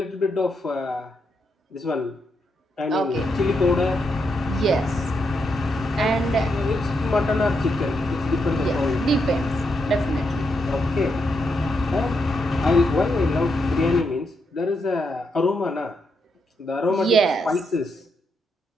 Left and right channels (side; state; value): both; normal; correlation 0.81